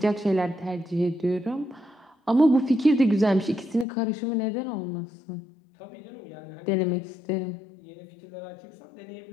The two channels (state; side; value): drops out; right; at 3.9 s